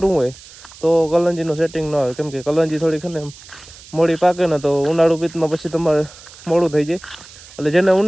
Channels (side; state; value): right; noise; hiss, 20 dB below the sound